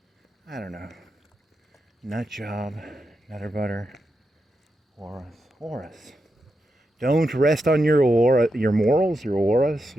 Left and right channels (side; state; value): both; normal; correlation 0.86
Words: I don't know. Nut job. Nutter butter. Horace. Don't rest on your morals, your auras,